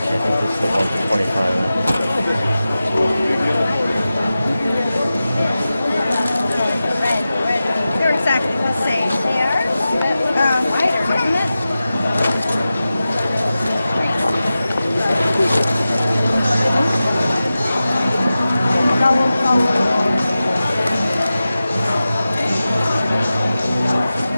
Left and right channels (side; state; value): both; inverted; correlation -0.94